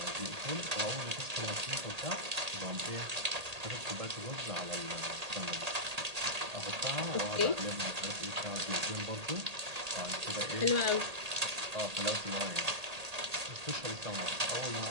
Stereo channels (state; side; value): late; left; 1.8 ms